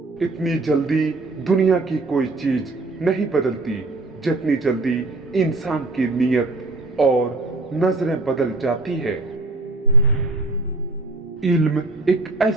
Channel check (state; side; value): quieter; left; 3.1 dB